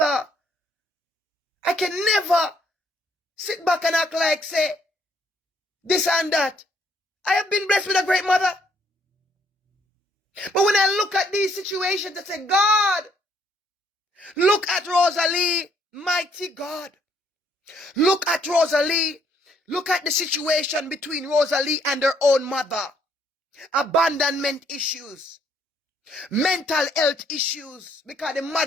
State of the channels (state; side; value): normal; both; correlation 0.67